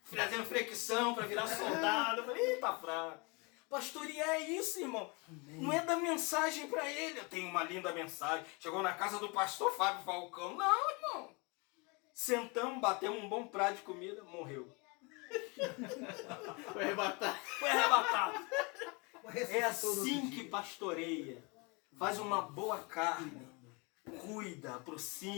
fazendo flexão para virar soldado. Eu falei, tá fraco. Pastorear é isso, irmão. Não é dar mensagem para ele. Eu tenho uma linda mensagem. Chegou na casa do pastor Fábio Falcão. Não, irmão. Sentamos, batemos um bom prato de comida, morreu. Foi arrebatado. Foi arrebatado. É assim que pastoreia. Faz uma boa carne. Cuida,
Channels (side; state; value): right; quieter; 29.6 dB